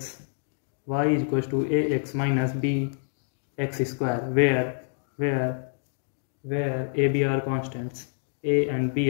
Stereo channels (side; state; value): right; silent; digital silence